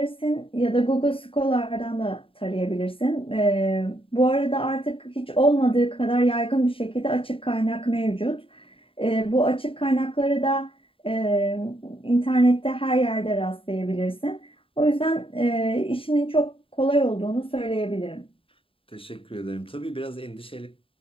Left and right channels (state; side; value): late; right; 0.26 ms